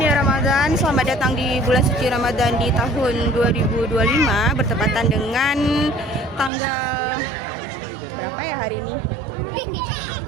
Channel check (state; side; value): drops out; left; at 6.5 s